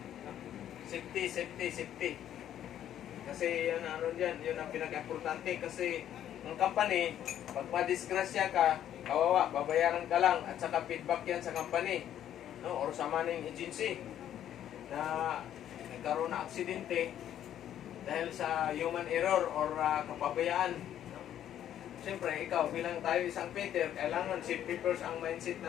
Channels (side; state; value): right; quieter; 10.9 dB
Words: Safety, safety, safety. Kasi yun ano dyan, yun ang pinaka-importante. Kasi ang company, pag madisgrasya ka, kawawa, babayaran ka lang at saka feedback yan sa company, no? Or sa manning agency na nagkaroon na aksidente dahil sa human error or kapabayaan. No? Siyempre, ikaw bilang tayo isang Peter, kailangan safety first ang mindset